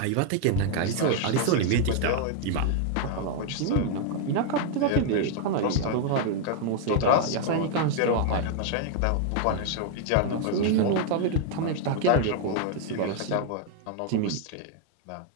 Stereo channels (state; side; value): different; both; correlation 0.00